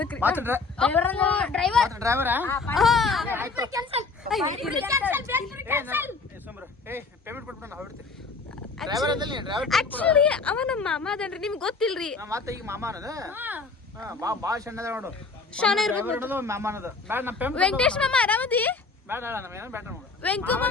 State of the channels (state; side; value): quieter; right; 4.2 dB